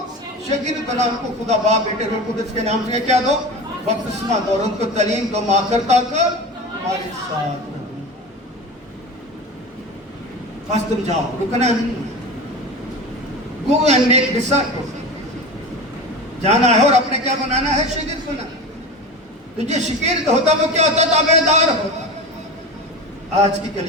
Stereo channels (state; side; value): normal; both; correlation 0.29